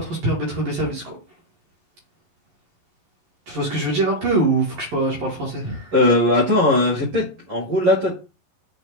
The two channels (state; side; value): late; left; 11 ms